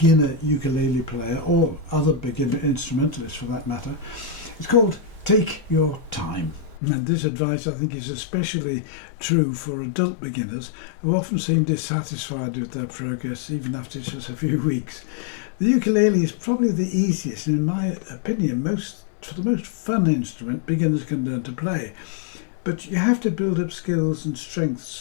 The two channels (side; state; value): right; drops out; at 6.8 s